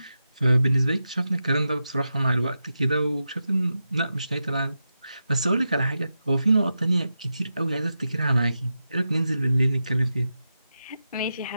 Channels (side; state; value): both; inverted; correlation -0.89